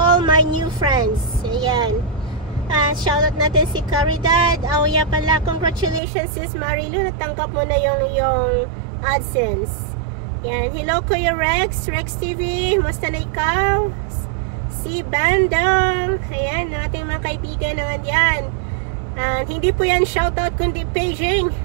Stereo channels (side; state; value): left; drops out; at 6.0 s